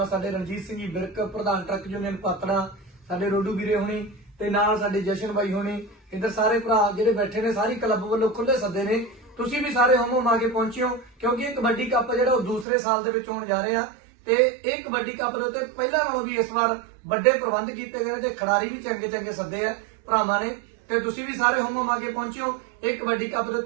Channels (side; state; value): left; drops out; at 12.7 s